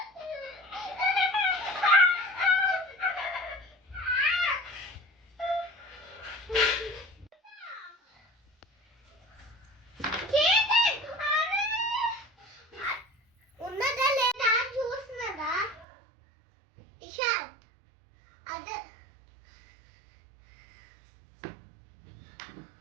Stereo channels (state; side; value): drops out; left; at 15.9 s